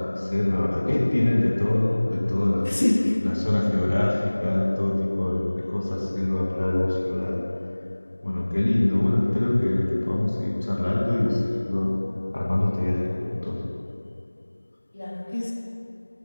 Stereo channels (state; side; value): inverted; both; correlation -1.00